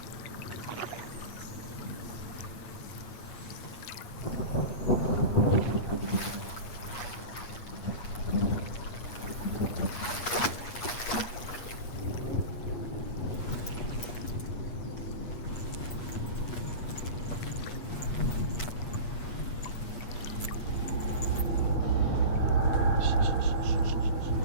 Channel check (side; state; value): right; late; 8.4 ms